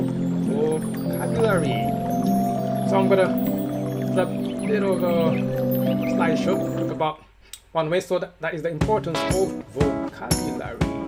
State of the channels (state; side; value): identical; both; correlation 1.00